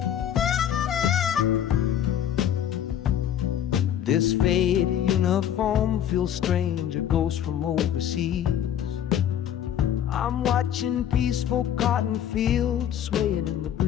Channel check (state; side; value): quieter; right; 10.0 dB